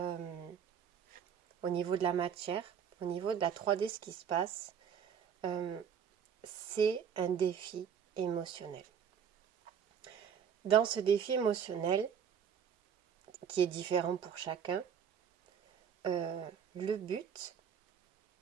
au niveau de la matière, au niveau de la 3D, ce qui se passe, euh, c'est un défi émotionnel. Dans ce défi émotionnel, qui est différent pour chacun, le but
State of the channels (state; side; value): quieter; left; 7.8 dB